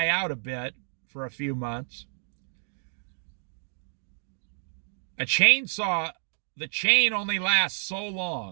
out a bit for a few months. A chainsaw, the chain only lasts so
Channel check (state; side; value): silent; left; digital silence